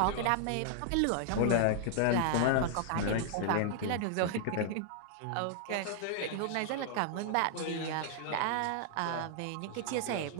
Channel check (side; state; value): both; different; correlation -0.01